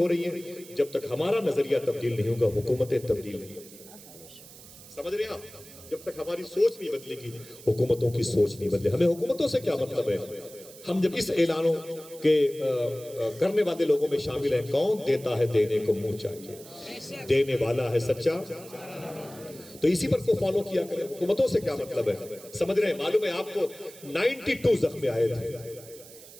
رہی ہیں. جب تک ہمارا نظریہ تبدیل نہیں ہوگا حکومتیں تبدیل نہیں ہوگی. سمجھ رہے ہیں آپ؟ جب تک ہماری سوچ نہیں بدلے گی حکومتوں کی سوچ نہیں بدلے. ہمیں حکومتوں سے کیا مطلب ہے؟ ہم جب اس اعلانوں کے کرنے والے لوگوں میں شامل ہیں, کون دیتا ہے دینے کو منہ چاہیے, دینے والا ہے سچا, تو اسی پر کو فالو کیا کریں. حکومتوں سے کیا مطلب ہے؟ سمجھ رہے ہیں؟ معلوم ہے آپ کو 92 زخم آئے تھے,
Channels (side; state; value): right; noise; hiss, 19 dB below the sound